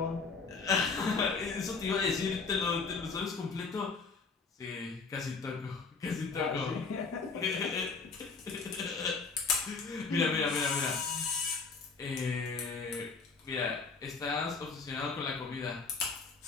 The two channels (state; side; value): quieter; right; 4.6 dB